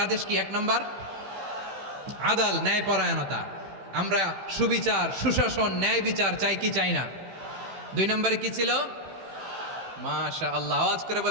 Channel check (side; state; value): left; late; 15 ms